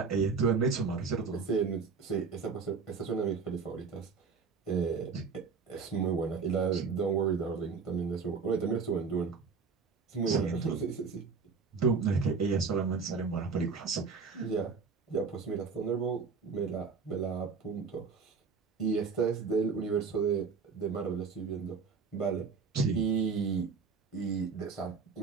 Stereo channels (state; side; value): quieter; left; 5.2 dB